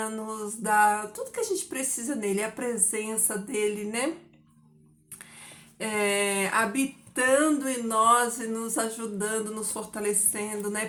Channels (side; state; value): both; identical; correlation 1.00